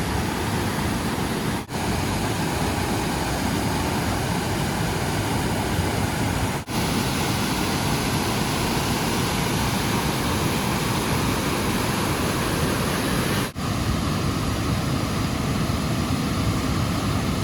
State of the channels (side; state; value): both; identical; correlation 1.00